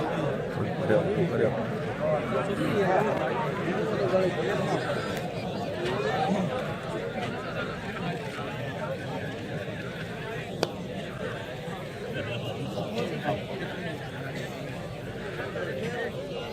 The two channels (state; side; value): identical; both; correlation 1.00